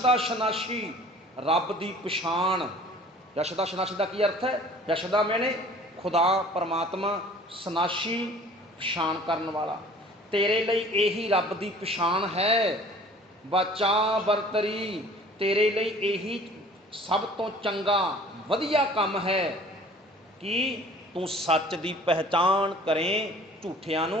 ਸ਼ਨਾਸ਼ੀ, ਰੱਬ ਦੀ ਪਛਾਣ। ਯਸ਼ਦਾ ਸ਼ਨਾਸ਼ੀ ਦਾ ਕੀ ਅਰਥ ਹੈ? ਯਸ਼ਦਾ ਮੈਨੇ ਖੁਦਾ ਪਰਮਾਤਮਾ, ਸ਼ਨਾਸ਼ੀ ਪਛਾਣ ਕਰਨ ਵਾਲਾ। ਤੇਰੇ ਲਈ ਇਹੀ ਰੱਬ ਦੀ ਪਛਾਣ ਹੈ। ਬਚਾ ਬਰਤਰੀ, ਤੇਰੇ ਲਈ ਇਹੀ ਸਭ ਤੋਂ ਚੰਗਾ ਵਧੀਆ ਕੰਮ ਹੈ ਕਿ ਤੂੰ ਸੱਚ ਦੀ ਪਹਿਚਾਣ ਕਰੇ, ਝੂਠਿਆਂ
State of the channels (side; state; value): both; normal; correlation 0.49